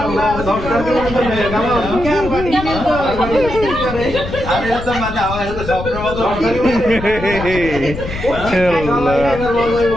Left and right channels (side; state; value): left; noise; rumble, 9 dB below the sound